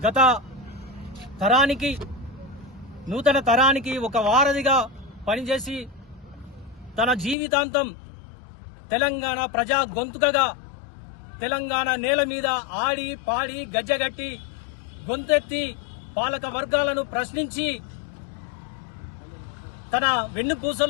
గత తరానికి నూతన తరానికి ఒక వారధిగా పనిచేసి తన జీవితాంతం తెలంగాణ ప్రజా గొంతుకగా తెలంగాణ నేల మీద ఆడి పాడి గజ్జగట్టి గొంతెత్తి పాలక వర్గాలను ప్రశ్నించి తన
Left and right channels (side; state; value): right; drops out; at 7.4 s